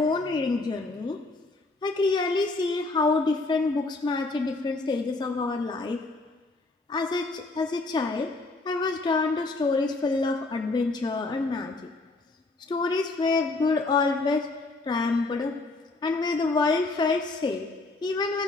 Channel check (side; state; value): right; quieter; 3.3 dB